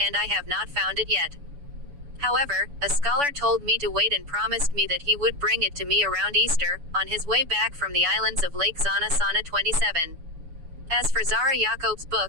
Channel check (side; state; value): left; late; 7.0 ms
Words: and I have not found it yet. However, a scholar told me to wait and promised me that he would bring it to me around Easter, on his way back from the islands of Lake Zana Sana 27. As for Zara Yacob's